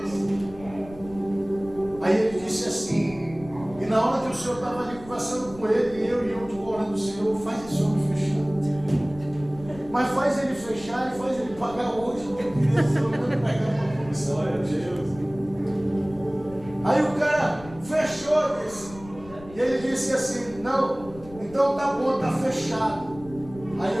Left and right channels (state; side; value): noise; left; rumble, 18 dB below the sound